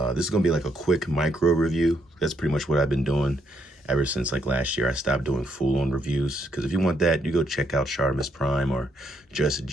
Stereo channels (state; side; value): normal; both; correlation 0.75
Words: is gonna be like a quick micro review. That's pretty much what I've been doing ever since like last year. I stopped doing full-on reviews because if you want that, you go check out Sharmus Prime or Just